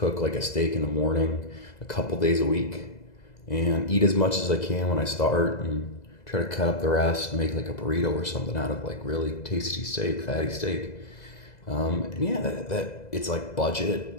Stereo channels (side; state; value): right; late; 2.0 ms